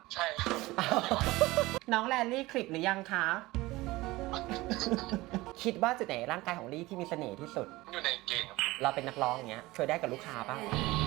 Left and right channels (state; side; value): quieter; left; 19.7 dB